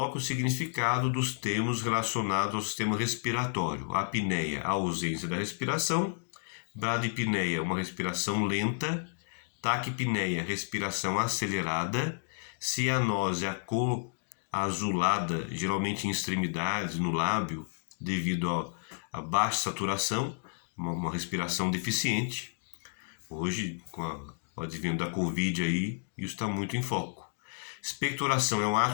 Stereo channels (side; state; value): right; silent; digital silence